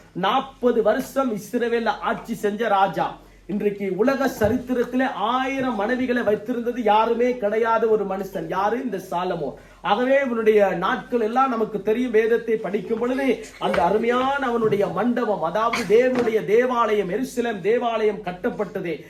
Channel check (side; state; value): both; identical; correlation 1.00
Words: 40 வருஷம் இஸ்ரவேல்ல ஆட்சி செஞ்ச ராஜா. இன்றைக்கு உலக சரித்திரத்திலே 1000 மனைவிகளை வைத்திருந்தது யாருமே கிடையாத ஒரு மனுஷன். யாரு? இந்த சாலமோன். ஆகவே இவனுடைய நாட்கள் எல்லாம் நமக்கு தெரியும். வேதத்தை படிக்கும் பொழுது அந்த அருமையான அவனுடைய மண்டபம், அதாவது தேவனுடைய தேவாலயம், எருசலேம் தேவாலயம் கட்டப்பட்டது.